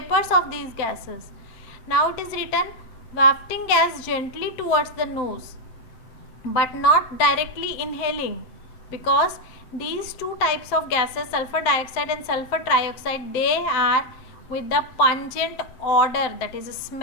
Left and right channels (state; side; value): late; right; 7.7 ms